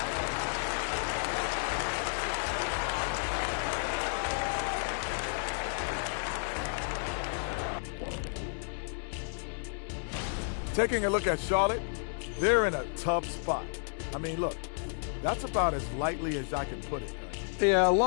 Taking a look at Charlotte, they're in a tough spot. I mean, look, that's about as lightly as I can put it. Yeah, a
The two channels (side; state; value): right; silent; 56 dB below the other